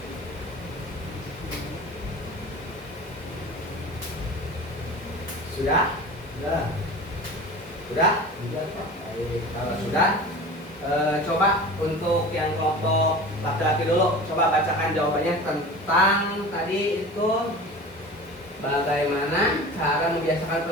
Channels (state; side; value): normal; both; correlation 0.36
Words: Sudah? Sudah. Sudah? Sudah, Pak. Baik, kalau sudah, coba untuk yang kelompok laki-laki dulu, coba bacakan jawabannya tentang tadi itu bagaimana cara membiasakan